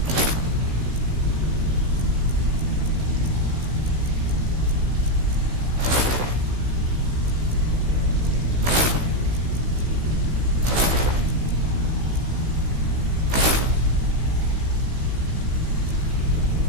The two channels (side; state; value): left; late; 16 ms